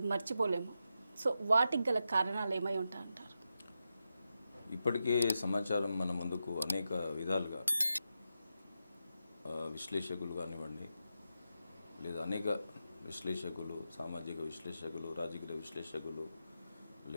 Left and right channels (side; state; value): both; inverted; correlation -0.88